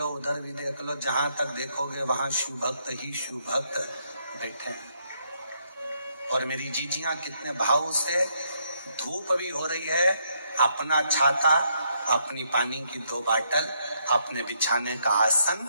उधर भी देख लो, जहां तक देखोगे वहां शिव भक्त ही शिव भक्त बैठे हैं। और मेरी जीजियां कितने भाव से, धूप भी हो रही है, अपना छाता, अपनी पानी की 2 बाटल, अपने बिछाने का आसन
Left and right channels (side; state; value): both; inverted; correlation -0.75